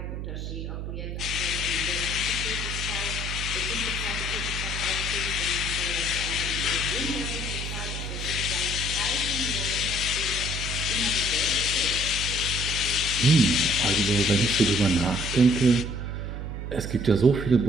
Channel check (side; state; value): right; noise; hum, 5 dB below the sound